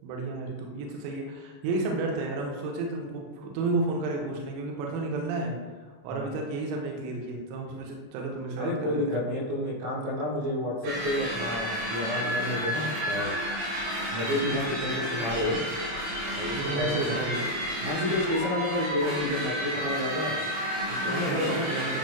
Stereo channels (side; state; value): left; late; 26 ms